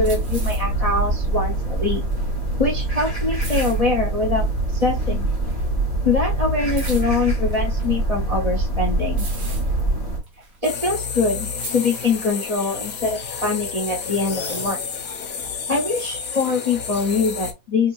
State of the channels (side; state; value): left; late; 4.1 ms